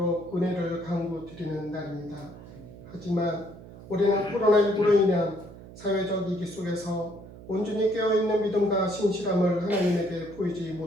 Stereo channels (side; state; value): right; noise; hum, 17 dB below the sound